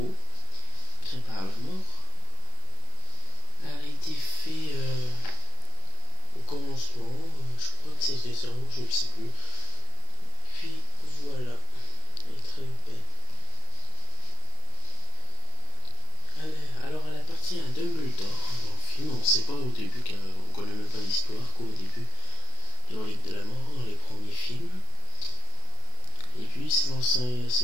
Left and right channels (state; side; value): late; right; 32 ms